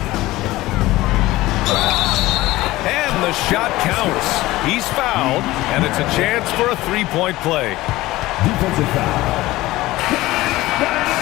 And the shot counts. He's fouled, and it's a chance for a 3-point play. Defensive foul.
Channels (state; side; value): quieter; right; 18.0 dB